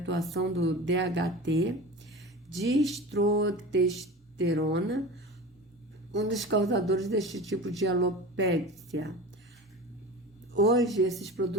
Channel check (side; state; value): both; normal; correlation 0.32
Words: do DHT, dihidrotestosterona, um dos causadores deste tipo de alopécia. Hoje, esses